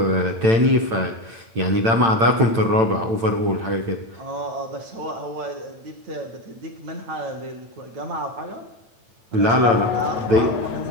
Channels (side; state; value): left; late; 8.9 ms